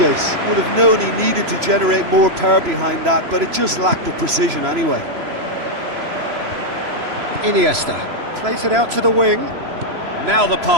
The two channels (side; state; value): left; late; 3.0 ms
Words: would have known he needed to generate more power behind that, but it just lacked the precision anyway. Iniesta plays it out to the wing. Now the